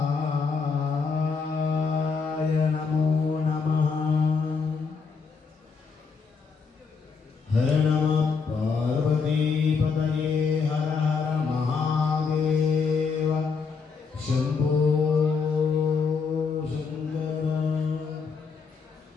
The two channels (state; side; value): quieter; right; 5.3 dB